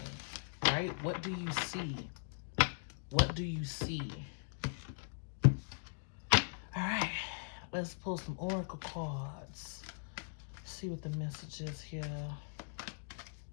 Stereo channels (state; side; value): silent; right; digital silence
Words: Right? What do you see? What do you see? All right. Let's pull some oracle cards. See what the message is here.